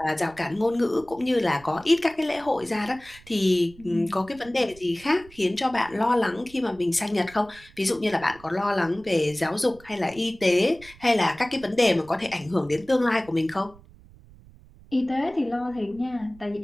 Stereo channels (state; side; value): noise; right; rumble, 23 dB below the sound